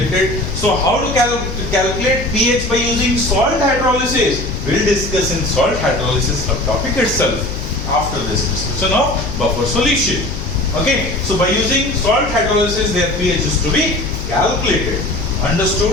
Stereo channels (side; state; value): left; noise; hum, 8 dB below the sound